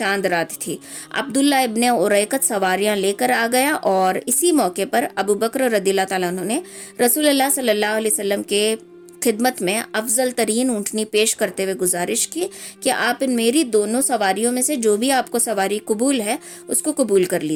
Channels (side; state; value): both; identical; correlation 1.00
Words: رات تھی، عبداللہ ابن اریقت سواریاں لے کر آ گیا اور اسی موقع پر ابو بکر رضی اللہ تعالیٰ عنہ نے رسول اللہ صلی اللہ علیہ وسلم کے خدمت میں افضل ترین اونٹنی پیش کرتے ہوئے گزارش کی کہ آپ ان میری دونوں سواریوں میں سے جو بھی آپ کو سواری قبول ہے اس کو قبول کر